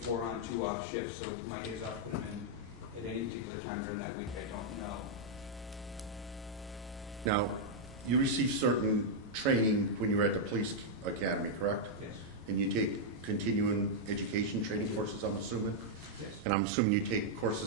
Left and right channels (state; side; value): normal; both; correlation -0.04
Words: 4-on, 2-off shift, so my days off put them in at any particular time during that week. I don't know. Now, you received certain training when you were at the police academy, correct? Yes. And you take continuing education training courses, I'm assuming? Yes. And I'm assuming you take